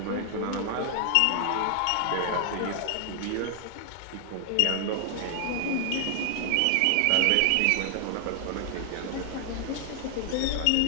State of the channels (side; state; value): both; different; correlation 0.00